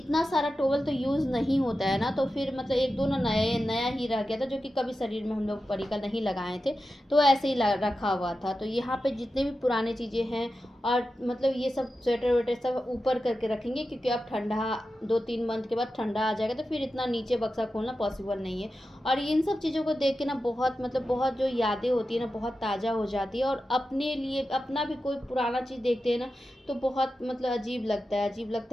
सारा टॉवल तो यूज़ नहीं होता है ना, तो फिर मतलब 1-2 ना नया ही रह गया था, जो कि कभी शरीर में हम लोग परी का नहीं लगाए थे, तो ऐसे ही रखा हुआ था। तो यहाँ पे जितने भी पुराने चीज़ें हैं, और मतलब ये सब स्वेटर वेटर सब ऊपर करके रखेंगे, क्योंकि अब ठंडा 2-3 मंथ के बाद ठंडा आ जाएगा, तो फिर इतना नीचे बक्सा खोलना पॉसिबल नहीं है। और इन सब चीज़ों को देख के ना बहुत मतलब बहुत जो यादें होती है ना बहुत ताज़ा हो जाती है, और अपने लिए अपना भी कोई पुराना चीज़ देखते हैं ना तो बहुत मतलब अजीब लगता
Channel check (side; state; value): both; normal; correlation 0.92